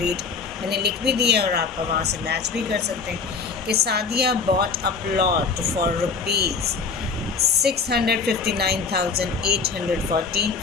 मैंने लिख भी दिया है और आप वहाँ से मैच भी कर सकते हैं कि Sadia bought a plot for rupees 659,814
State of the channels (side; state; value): right; quieter; 5.0 dB